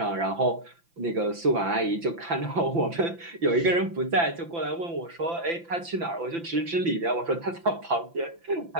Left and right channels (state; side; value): late; left; 5.9 ms